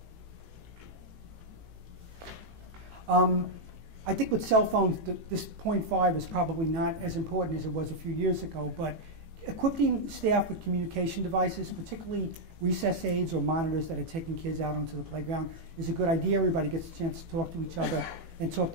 I think with cell phones, this point 5 is probably not as important as it was a few years ago, but equipping staff with communication devices, particularly recess aids or monitors that are taking kids out onto the playground, is a good idea. Everybody gets a chance to talk to each other and talk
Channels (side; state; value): left; late; 18 ms